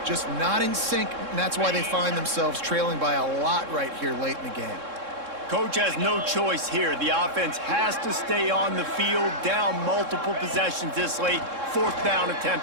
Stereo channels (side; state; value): left; late; 3.7 ms